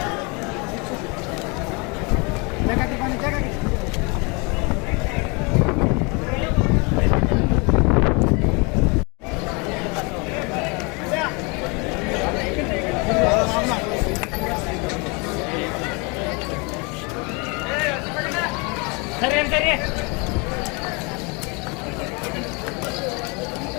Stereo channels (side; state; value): right; quieter; 30.2 dB